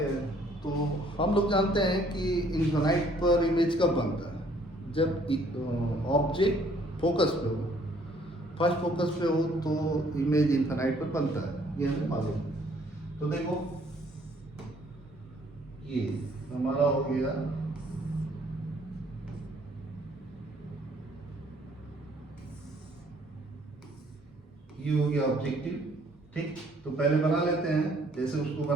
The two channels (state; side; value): normal; both; correlation 0.62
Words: हैं। तो हम लोग जानते हैं कि इन्फिनाइट पर इमेज कब बनता है, जब ऑब्जेक्ट फोकस पे हो, फर्स्ट फोकस पे हो तो इमेज इन्फिनाइट पर बनता है, ये हमें मालूम है। तो देखो ये हमारा हो गया ये हो गया ऑब्जेक्टिव, ठीक। तो पहले बना लेते हैं जैसे उसको